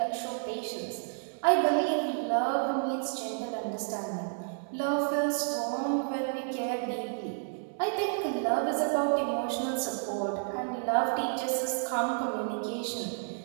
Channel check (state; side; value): silent; left; digital silence